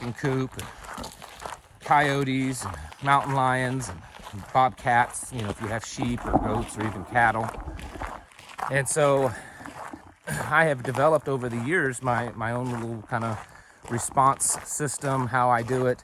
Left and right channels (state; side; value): identical; both; correlation 1.00